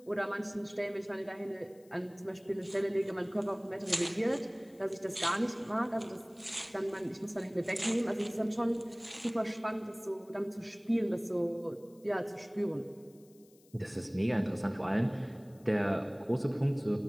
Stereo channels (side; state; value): left; noise; hiss, 29 dB below the sound